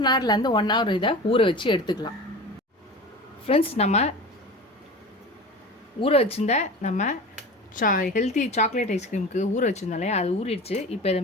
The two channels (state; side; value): normal; both; correlation 0.34